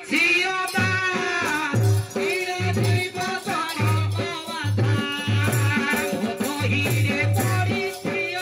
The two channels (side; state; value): both; identical; correlation 1.00